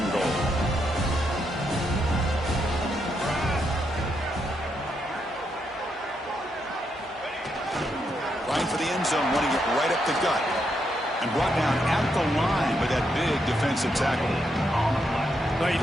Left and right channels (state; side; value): normal; both; correlation 0.80